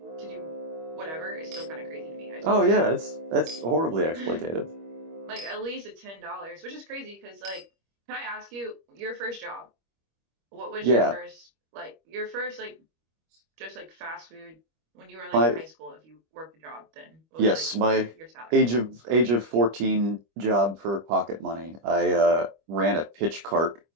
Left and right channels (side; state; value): left; late; 25 ms